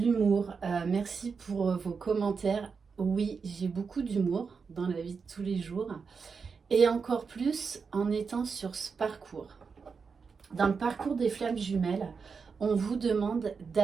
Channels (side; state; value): left; quieter; 5.4 dB